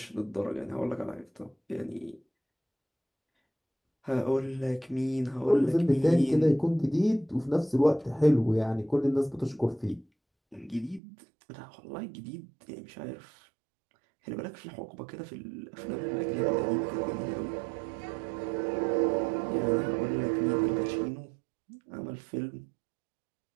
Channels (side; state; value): left; drops out; at 11.0 s